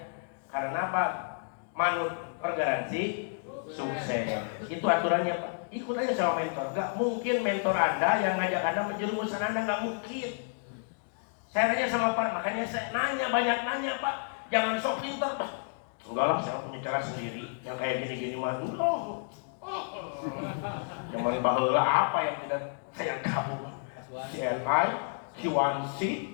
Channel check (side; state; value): right; silent; digital silence